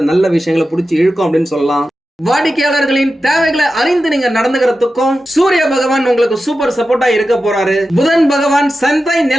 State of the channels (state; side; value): normal; both; correlation 0.92